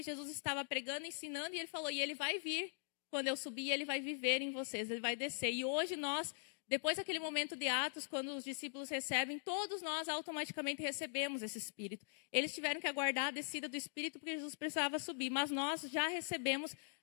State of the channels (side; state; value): right; silent; digital silence